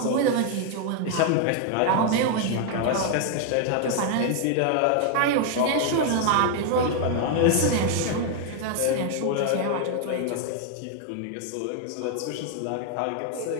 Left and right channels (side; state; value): both; different; correlation 0.00